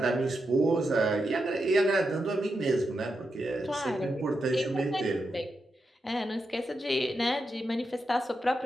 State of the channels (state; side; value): normal; both; correlation 0.86